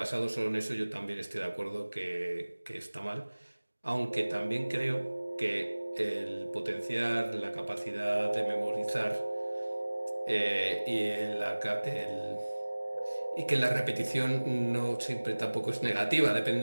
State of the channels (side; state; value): both; inverted; correlation -1.00